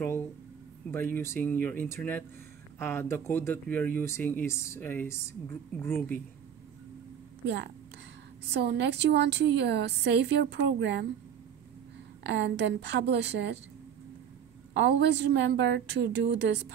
by using your internet, the code that we are using is Groovy. Yeah. So next you want to save your program and then publish it. Always remember to do this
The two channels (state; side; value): quieter; left; 8.5 dB